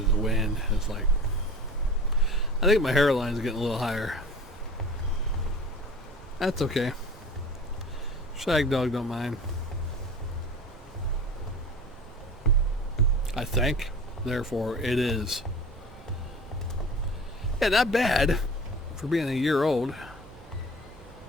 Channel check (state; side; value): normal; both; correlation 0.39